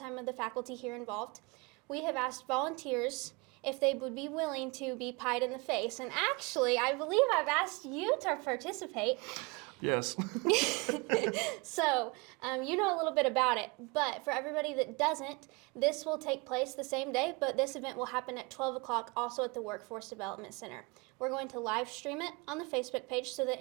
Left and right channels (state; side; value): quieter; left; 27.9 dB